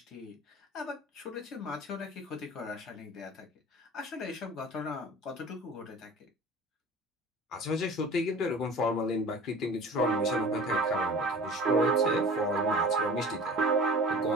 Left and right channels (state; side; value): normal; both; correlation 0.41